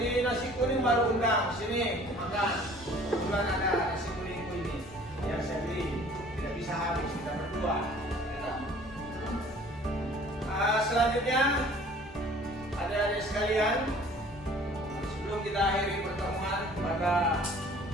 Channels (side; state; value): both; normal; correlation 0.51